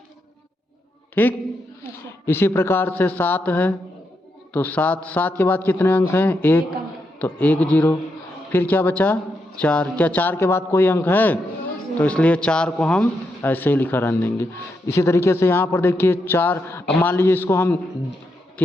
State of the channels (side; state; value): both; normal; correlation 0.83